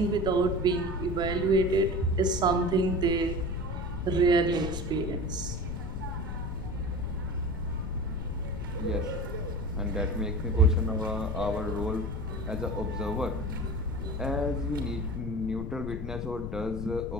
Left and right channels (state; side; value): noise; left; rumble, 5 dB below the sound